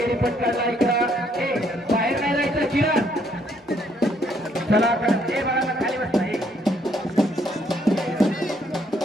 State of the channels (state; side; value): normal; both; correlation 0.69